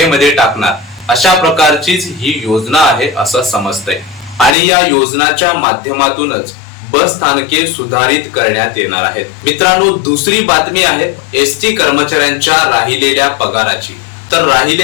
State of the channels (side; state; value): right; drops out; at 4.5 s